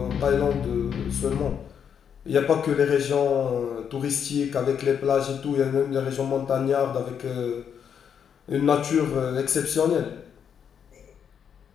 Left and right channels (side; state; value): right; quieter; 7.8 dB